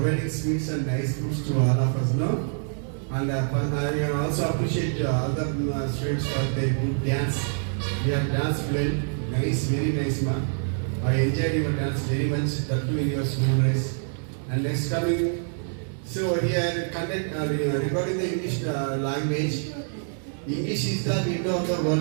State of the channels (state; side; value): silent; left; digital silence